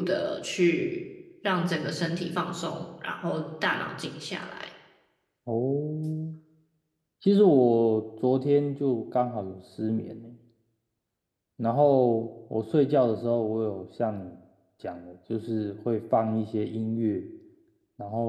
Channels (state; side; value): identical; both; correlation 1.00